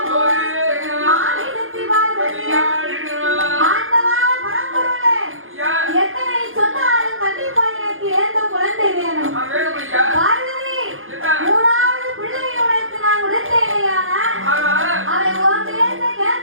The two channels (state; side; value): late; left; 0.59 ms